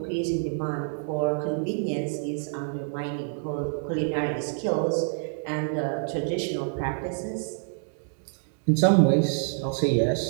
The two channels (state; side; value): silent; left; 60 dB below the other